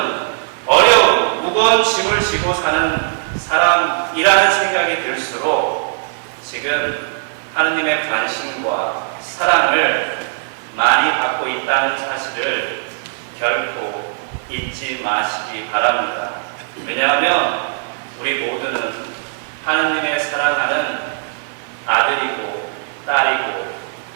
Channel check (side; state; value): left; silent; 55 dB below the other